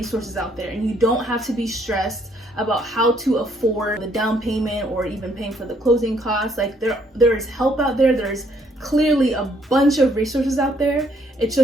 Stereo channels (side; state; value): both; normal; correlation 0.67